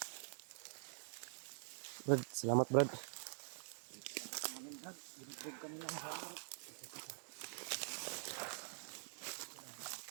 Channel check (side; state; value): left; silent; digital silence